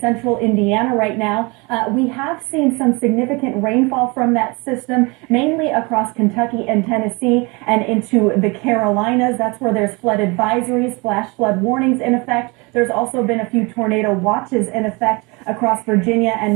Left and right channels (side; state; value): left; quieter; 27.5 dB